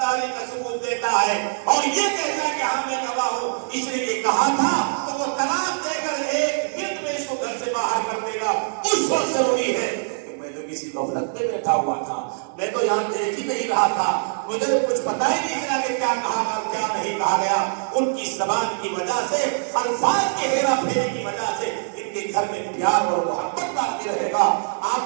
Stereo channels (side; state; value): left; silent; digital silence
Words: کا ثبوت دیتا ہے اور یہ کہتا ہے کہ ہاں میں گواہ ہوں اس نے یہ کہا تھا, تو وہ طلاق دے کر 1 منٹ میں اس کو گھر سے باہر کر دے گا. اس وقت ضروری ہے کہ میں تو کسی غفلت میں بیٹھا ہوا تھا, میں تو یہاں دیکھ ہی نہیں رہا تھا, مجھے کچھ پتا ہی نہیں چلا کہ کیا کہا اور کیا نہیں کہا گیا. ان کی زبان کی وجہ سے, الفاظ کے ہیرا پھیری کی وجہ سے ان کے گھر میں پیار اور محبت باقی رہے گا,